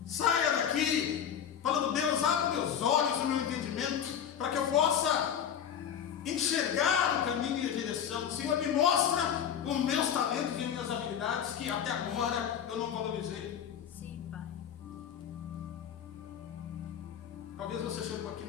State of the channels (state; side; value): quieter; right; 8.7 dB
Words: Saia daqui falando: Deus, abre meus olhos, o meu entendimento, para que eu possa enxergar o caminho e a direção. Senhor, me mostra os meus talentos e minhas habilidades que até agora eu não valorizei. Sim, Pai. Talvez você chegou aqui